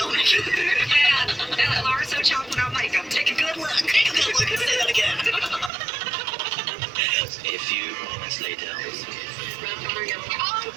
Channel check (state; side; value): drops out; left; at 5.7 s